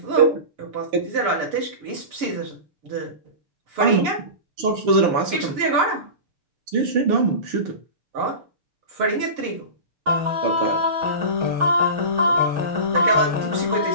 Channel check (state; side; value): late; left; 6.9 ms